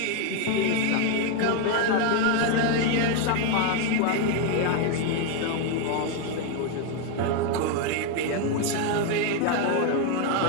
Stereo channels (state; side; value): different; both; correlation 0.01